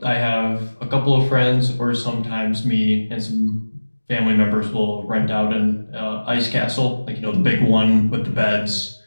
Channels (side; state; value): both; inverted; correlation -1.00